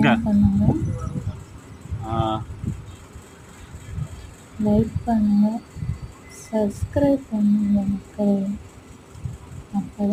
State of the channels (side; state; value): both; identical; correlation 1.00